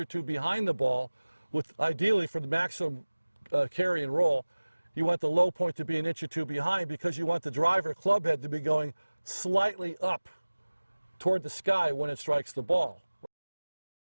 two behind the ball, with ideally for the maximum carry and roll, you want the low point to be an inch or two behind because you want the driver club head to be going slightly up toward the sky when it strikes the ball.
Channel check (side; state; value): both; inverted; correlation -1.00